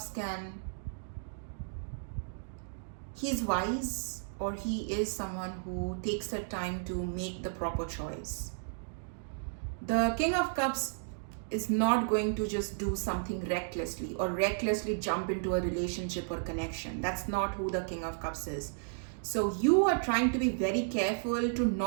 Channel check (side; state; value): left; silent; digital silence